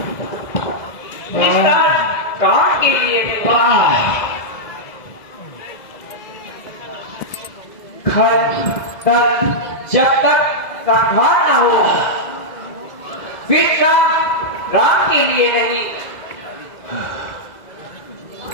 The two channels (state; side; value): late; right; 2.0 ms